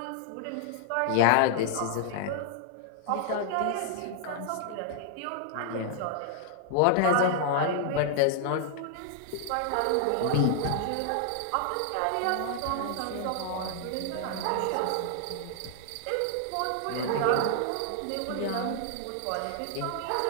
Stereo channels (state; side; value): different; both; correlation 0.00